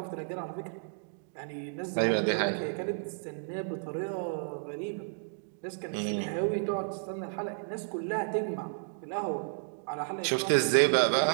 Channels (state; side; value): silent; left; digital silence